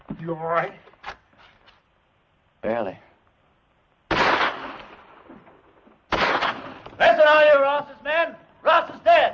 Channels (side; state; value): both; identical; correlation 1.00